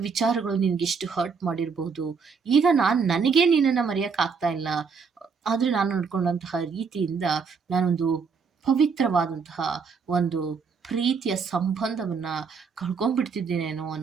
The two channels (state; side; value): quieter; left; 5.5 dB